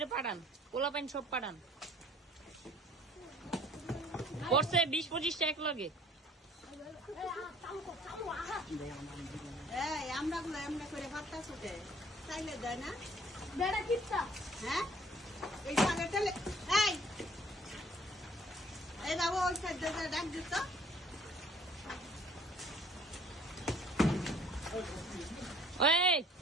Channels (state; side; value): normal; both; correlation 0.55